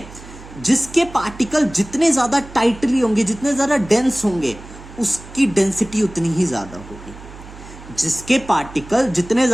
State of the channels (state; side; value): noise; right; hum, 17 dB below the sound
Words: जिसके पार्टिकल जितने ज्यादा टाइटली होंगे, जितने ज्यादा डेंस होंगे, उसकी डेंसिटी उतनी ही ज्यादा होगी। जिसके पार्टिकल जितने